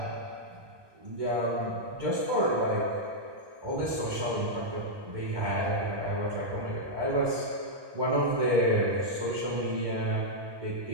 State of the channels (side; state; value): left; late; 1.2 ms